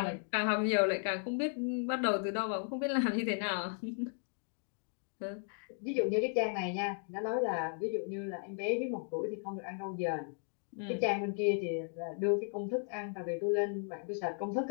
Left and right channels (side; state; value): right; silent; 54 dB below the other